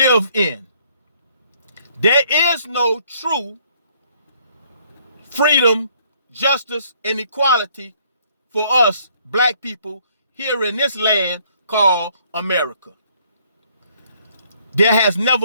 in, there is no true freedom, justice, and equality for us black people here in this land called America. There has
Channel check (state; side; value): inverted; both; correlation -0.65